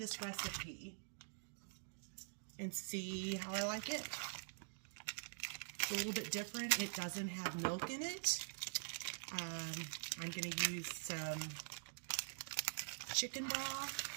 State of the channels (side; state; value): left; silent; digital silence